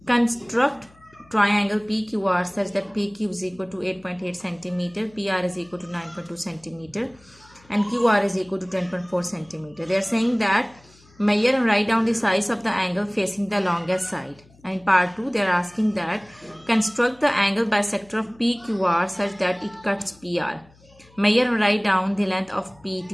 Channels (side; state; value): left; noise; hum, 28 dB below the sound